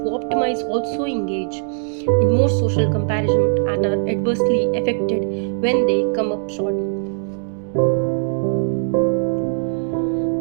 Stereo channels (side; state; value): left; silent; 60 dB below the other